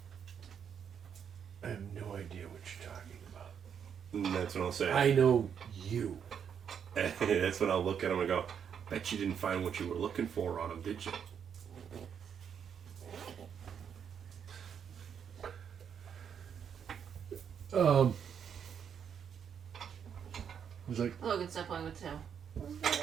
I have no idea what you're talking about. And that's what I'll say. I know you. And that's when I'll look at him and go, bet you didn't find what you were looking for on him, did you? He's like, Logan, stop playing with Tim.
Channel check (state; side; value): quieter; left; 7.8 dB